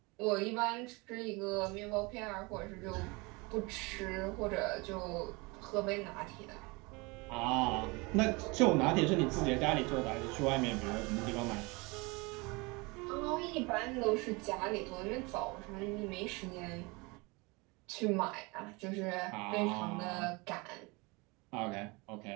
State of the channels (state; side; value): quieter; left; 26.5 dB